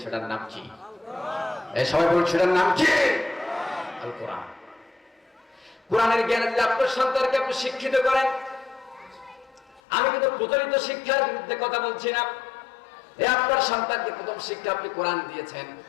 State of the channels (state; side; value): drops out; right; at 9.8 s